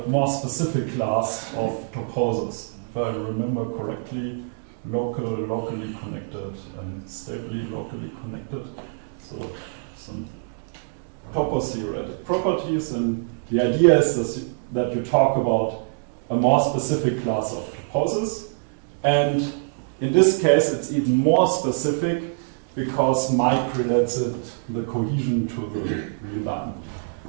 more specific class of toposes. If I remember correctly, locally connected, and stably locally connected. So some topos-theoretic properties, and the idea is that you talk about a more specific class of toposes. And in this case, it's even more specific because Mike relates it, the cohesion, to the real line,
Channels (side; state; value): left; silent; digital silence